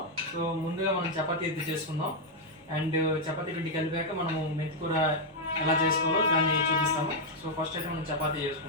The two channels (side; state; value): both; normal; correlation -0.01